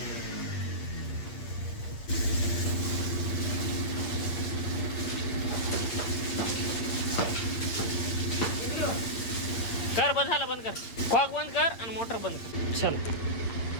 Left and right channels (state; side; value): late; right; 8.7 ms